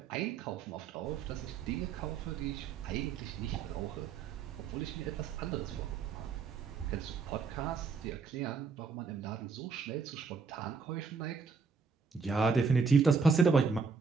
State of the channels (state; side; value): quieter; left; 5.1 dB